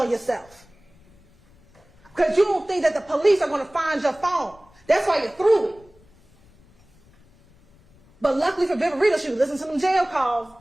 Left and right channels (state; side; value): noise; left; rumble, 29 dB below the sound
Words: yourself. Because you don't think that the police are going to find your phone. That's why you threw it. But luckily for Viverito, she listened to them jail calls